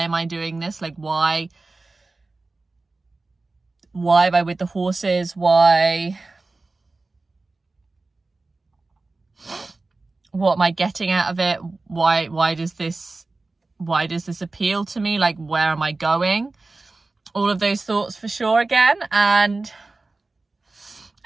am I doing this, like why am I with the horses, what am I getting out of it, why does this appeal to me, like where am I going, all of those thoughts for sure again. And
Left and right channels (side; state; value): left; quieter; 3.4 dB